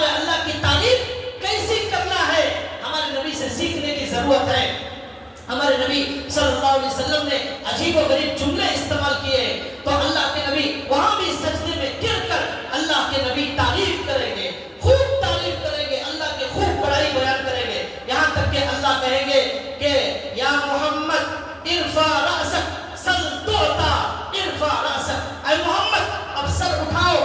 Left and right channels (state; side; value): identical; both; correlation 1.00